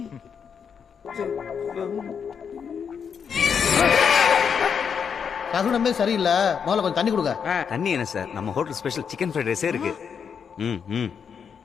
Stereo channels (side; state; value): right; quieter; 6.9 dB